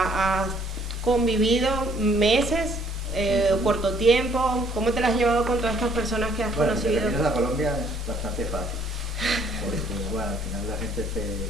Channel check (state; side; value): normal; both; correlation 0.62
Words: ¿has convivido meses? Corto tiempo, ¿cómo te las has llevado con todas estas personas que has conocido? Bueno, la Colombia es bastante fácil, porque bueno, al final la gente